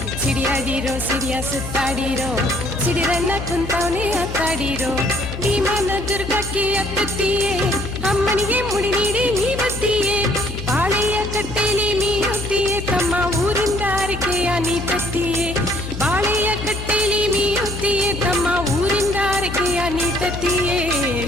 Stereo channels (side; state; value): left; noise; hum, 8 dB below the sound